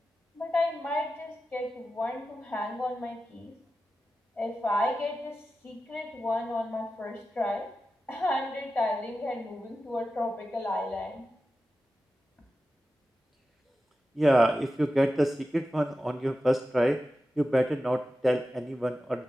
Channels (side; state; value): both; normal; correlation 0.92